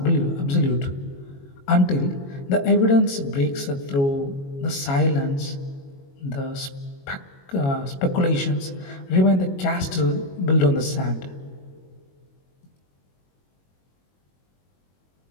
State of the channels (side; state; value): right; late; 22 ms